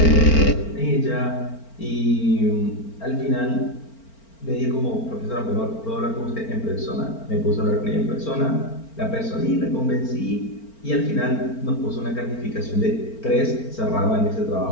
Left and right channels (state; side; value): late; right; 4.4 ms